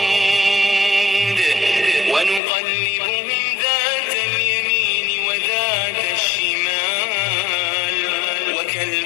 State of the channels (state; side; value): drops out; right; at 2.4 s